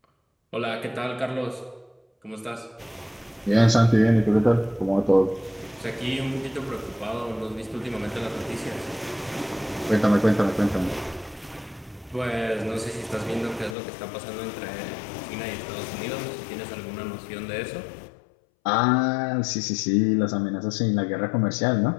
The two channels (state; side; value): drops out; right; at 13.8 s